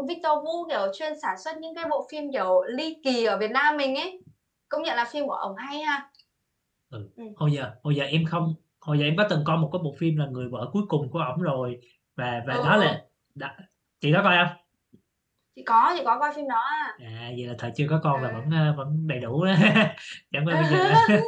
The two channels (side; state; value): both; identical; correlation 1.00